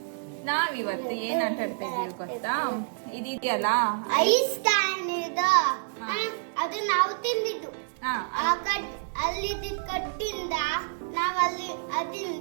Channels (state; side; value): silent; left; digital silence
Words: ನಾವಿವತ್ತು ಏನ್ ಆಟ ಆಡ್ತಾ ಇದೀವಿ ಗೊತ್ತಾ? ಇದೆಯಲ್ಲ ಐಸ್ ಕ್ಯಾನ್ ಇದು. ಅದು ನಾವು ತಿಂದಿದ್ದು. ಅಲ್ಲಿ ಕಟ್ಟಿಂದ ನಾವು